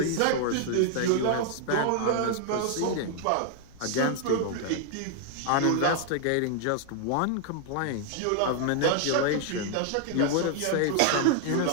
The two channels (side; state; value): both; different; correlation 0.00